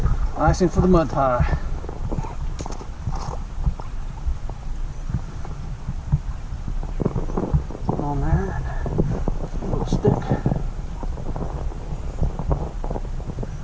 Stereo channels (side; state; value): both; identical; correlation 1.00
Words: icing for the mud pie. On there, a little stick.